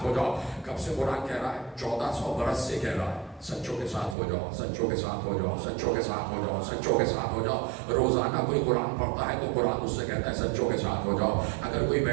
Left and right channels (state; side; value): drops out; left; at 4.2 s